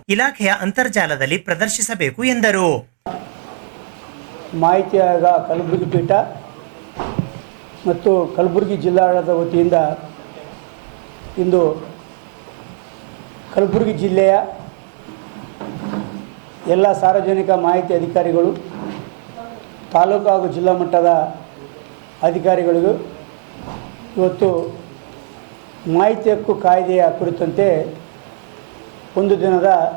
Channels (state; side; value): silent; left; 68 dB below the other